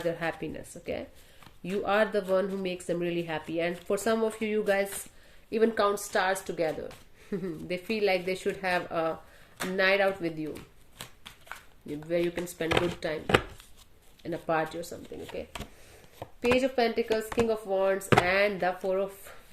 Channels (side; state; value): both; identical; correlation 1.00